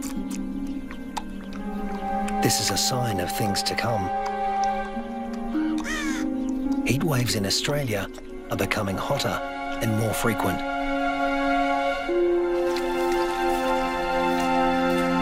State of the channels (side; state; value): both; identical; correlation 1.00